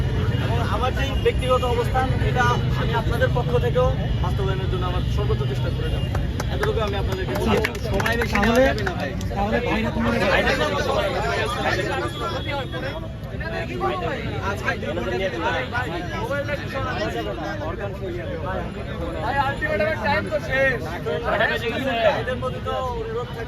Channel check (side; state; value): both; identical; correlation 1.00